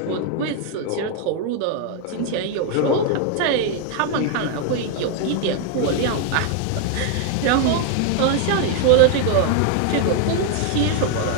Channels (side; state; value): both; different; correlation 0.00